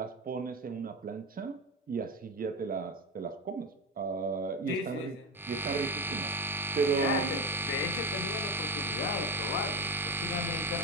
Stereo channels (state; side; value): normal; both; correlation 0.19